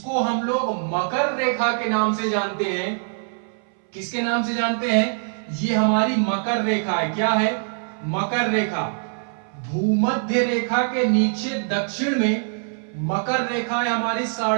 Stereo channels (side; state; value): left; silent; 63 dB below the other